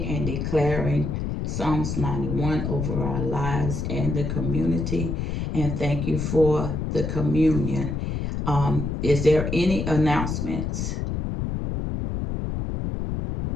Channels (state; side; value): noise; left; rumble, 2 dB below the sound